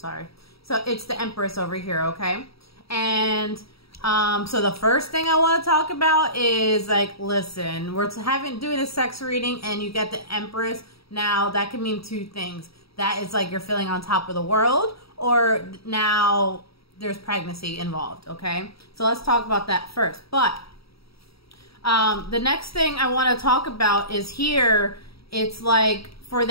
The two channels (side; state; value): right; late; 0.76 ms